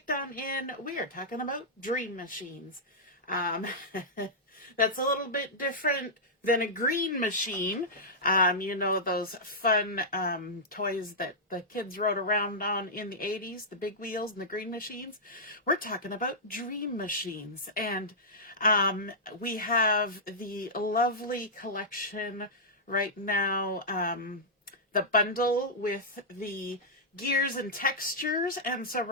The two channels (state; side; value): normal; both; correlation -0.11